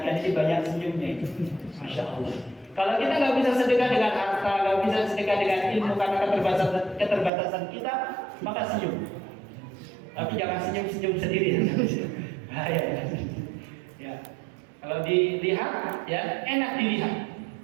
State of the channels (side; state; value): left; drops out; at 7.3 s